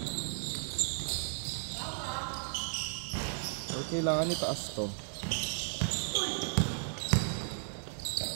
Or kailangan itaas to.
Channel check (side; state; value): left; silent; digital silence